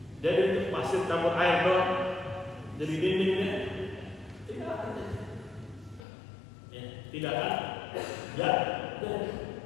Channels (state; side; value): drops out; right; at 6.1 s